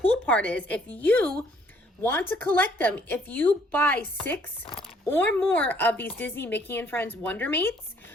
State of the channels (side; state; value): both; normal; correlation 0.63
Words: part is if you want to collect them, if you buy 6 or more of these Disney Mickey and Friends Wonder Mates,